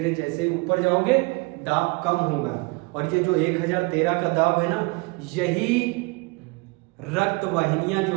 जैसे ऊपर जाओगे दाब कम होगा। और ये जो 1013 का दाब है ना, यही रक्त वाहिनियां जो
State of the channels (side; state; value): left; quieter; 28.3 dB